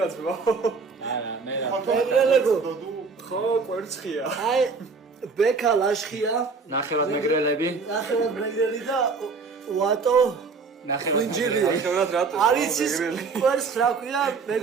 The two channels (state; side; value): quieter; left; 4.7 dB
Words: ძმა. არა მე რა. მეგრელებო ხო, ვერცხია. აი ბექა ლაშხია ნახევად მეგრელები. ნახევად მეგრელი და ვატო ხვინჯილი ნახევრად რატო? არის ის კვერცხს რა ქვია